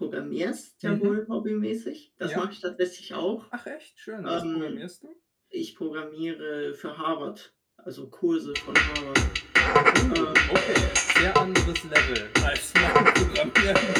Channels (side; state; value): both; identical; correlation 1.00